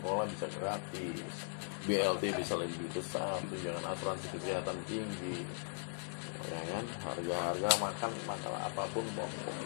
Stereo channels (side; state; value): right; silent; digital silence